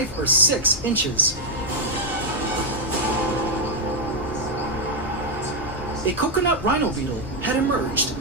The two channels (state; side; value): normal; both; correlation 0.00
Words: or 6 inches. A coconut rhino beetle had emerged